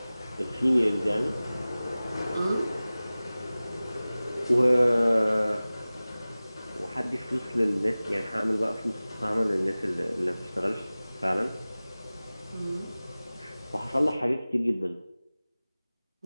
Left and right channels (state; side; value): inverted; both; correlation -0.98